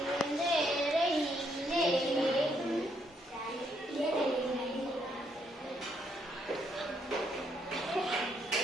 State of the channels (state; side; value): normal; both; correlation 0.74